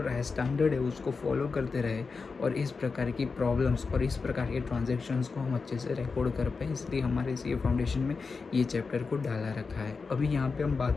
है, स्टैंडर्ड है, उसको फॉलो करते रहे और इस प्रकार की प्रॉब्लम्स और इस प्रकार के ट्रांजैक्शंस को हम अच्छे से रिकॉर्ड कर पाए, इसलिए हमारे सी फाउंडेशन में ये चैप्टर को डाला रखा है। अभी यहाँ पे हम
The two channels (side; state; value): right; quieter; 4.7 dB